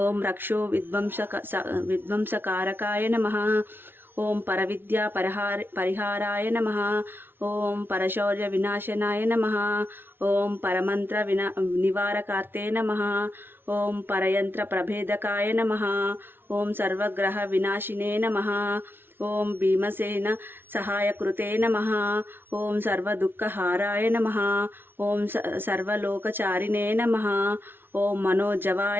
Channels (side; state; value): left; late; 0.11 ms